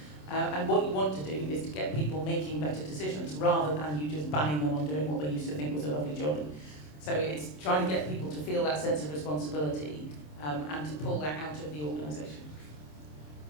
And what you want to do is to get people making better decisions rather than you just banning them on doing what they used to think was a lovely jolly. So it's trying to get people to feel that sense of responsibility and to pull that out of the organisation?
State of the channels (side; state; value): right; late; 27 ms